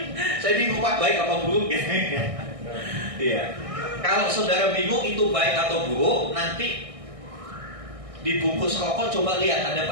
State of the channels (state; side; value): late; left; 1.6 ms